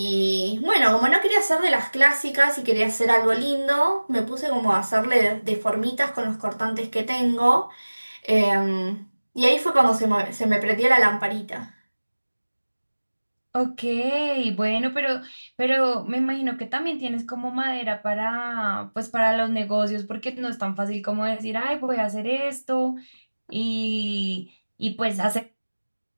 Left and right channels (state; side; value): inverted; both; correlation -1.00